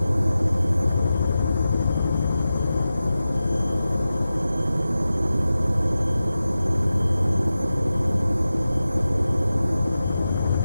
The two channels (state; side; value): inverted; both; correlation -0.94